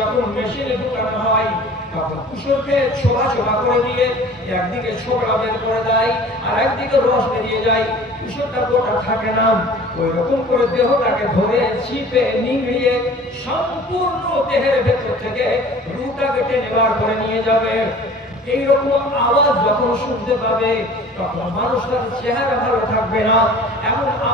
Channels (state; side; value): normal; both; correlation 0.45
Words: মেশিনে ঢুকানো হয় তখন কুসরকে ছোলা ছোলা করে দিয়ে একদিকে ছোকরা বের করে দেয় আর একদিকে রস বেরিয়ে যায়, কুসরটা গোটা থাকে না। ওই রকম করে দেহটাকে ধরে চিপে নিংড়িয়ে সম্পূর্ণ দেহের ভেতর থেকে রুটাকে টেনে বার করে নিয়ে যাবে। এইরকম আওয়াজ যখন শুনতে পাবে তখন মানুষটার চেহারা ভালো থাকবে না। এমন